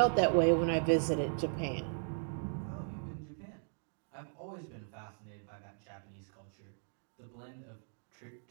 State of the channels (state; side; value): silent; left; digital silence